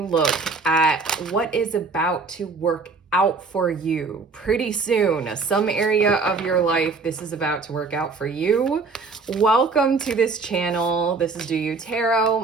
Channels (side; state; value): left; quieter; 4.3 dB